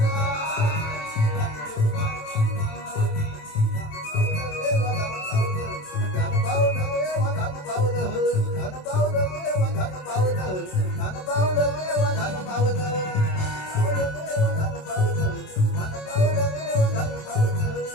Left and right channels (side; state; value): right; late; 27 ms